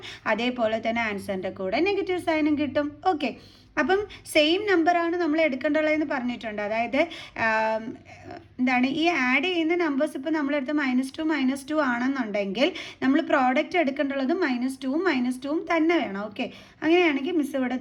അതേപോലെ തന്നെ ആൻസറിൻ്റെ കൂടെ നെഗറ്റീവ് സൈനും കിട്ടും. ഓക്കെ, അപ്പം സെയിം നമ്പറാണ് നമ്മൾ എടുക്കേണ്ടതെന്ന് പറഞ്ഞിട്ടുണ്ട്. അതായത് എന്താണ് ഈ ആഡ് ചെയ്യുന്ന നമ്പേഴ്സ് ഇപ്പോൾ നമ്മളെടുത്ത് -2 ആണെന്നുണ്ടെങ്കിൽ നമ്മൾ പ്രോഡക്റ്റ് എടുക്കേണ്ടുള്ളത് -2ഉം -2ഉം തന്നെ വേണം. ഓക്കെ, അങ്ങനെയാണെങ്കിൽ മിസ്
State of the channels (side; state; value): both; identical; correlation 1.00